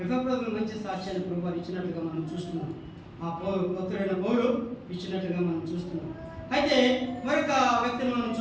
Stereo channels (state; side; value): identical; both; correlation 1.00